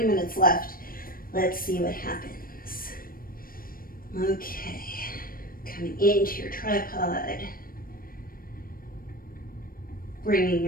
minutes left. Let's see what happens. Okay, coming into your tripod, bringing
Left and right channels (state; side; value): late; right; 0.41 ms